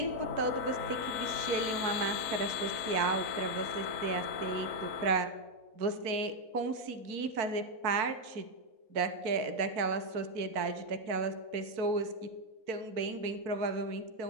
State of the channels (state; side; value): late; left; 4.5 ms